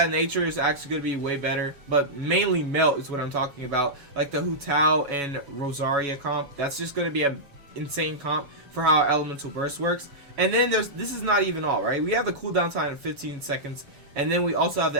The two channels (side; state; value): left; late; 7.1 ms